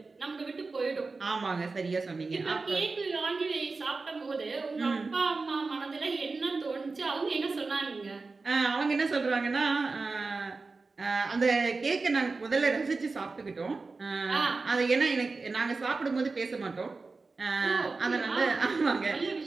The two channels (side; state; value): left; quieter; 3.9 dB